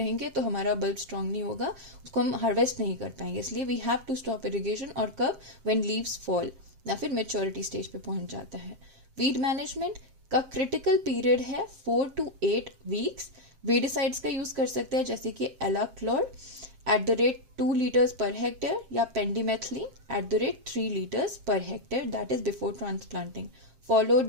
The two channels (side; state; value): left; late; 7.6 ms